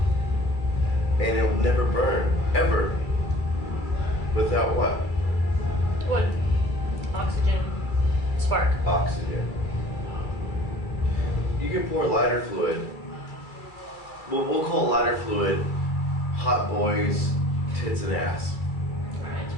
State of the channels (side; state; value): right; late; 2.3 ms